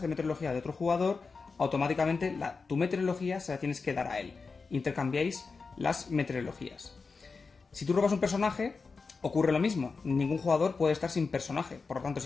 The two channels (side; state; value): right; quieter; 4.6 dB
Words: meteorología de otro jugador, automáticamente tu meteorología se la tienes que dar a él. Intercambiáis las meteorologías. Si tú robas un personaje, ocurre lo mismo. Ningún jugador puede estar sin personaje. Por lo tanto,